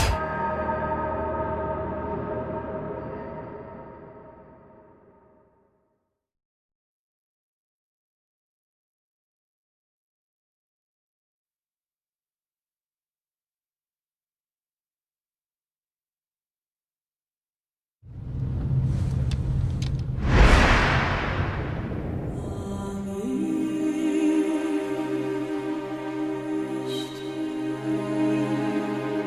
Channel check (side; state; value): both; identical; correlation 1.00